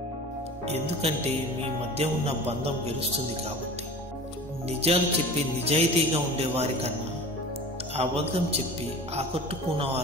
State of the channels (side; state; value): both; normal; correlation 0.38